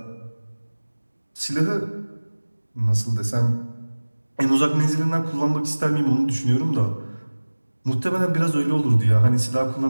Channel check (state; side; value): inverted; both; correlation -1.00